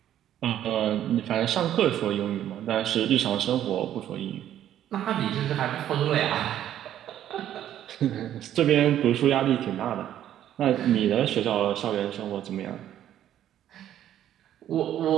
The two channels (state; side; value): quieter; left; 11.4 dB